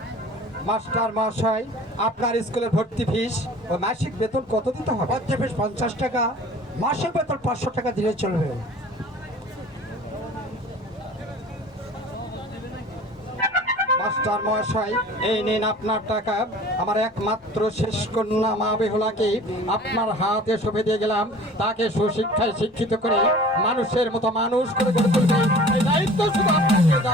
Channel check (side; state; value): both; normal; correlation 0.45